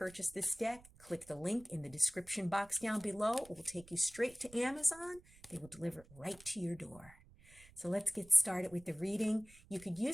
this deck, click the link in the description box down below. It will take you straight to Amazon. They will deliver it right to your door. So let's get started with the reading. You could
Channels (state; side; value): noise; right; rumble, 23 dB below the sound